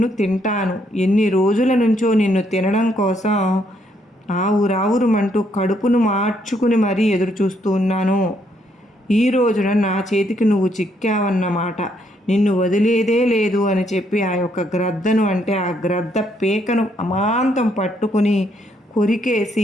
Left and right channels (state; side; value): normal; both; correlation 0.72